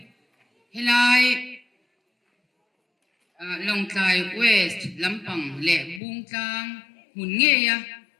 helai longtlai west lampang le bungtlang mun nge ya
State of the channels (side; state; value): right; drops out; at 6.0 s